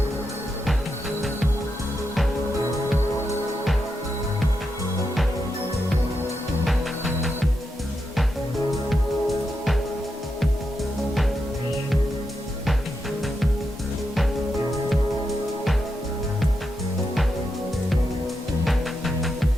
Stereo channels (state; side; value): normal; both; correlation 0.85